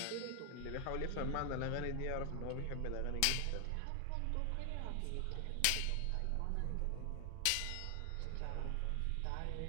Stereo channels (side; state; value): both; different; correlation 0.00